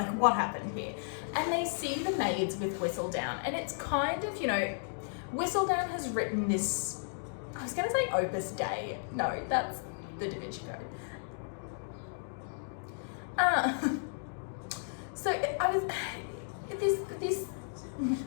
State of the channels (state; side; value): silent; right; digital silence